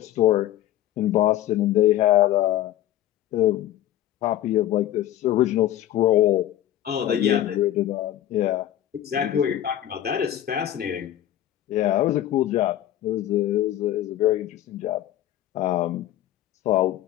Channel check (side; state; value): right; quieter; 12.8 dB